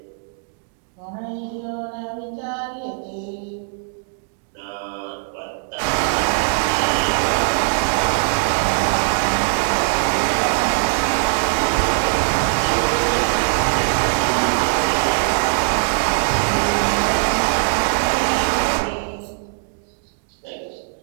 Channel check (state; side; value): silent; left; digital silence